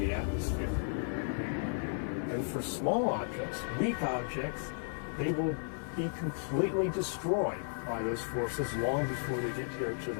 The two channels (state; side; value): silent; right; 55 dB below the other